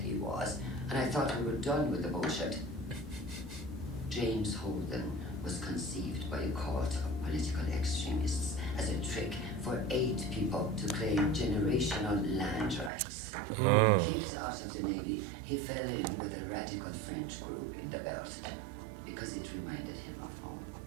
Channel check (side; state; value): left; drops out; at 12.9 s